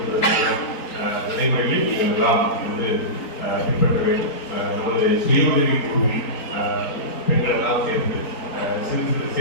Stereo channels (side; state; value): right; late; 4.3 ms